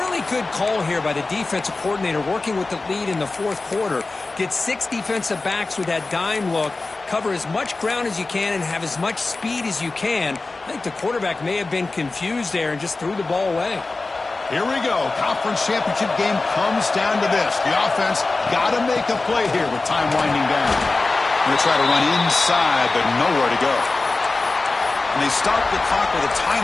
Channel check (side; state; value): right; quieter; 3.5 dB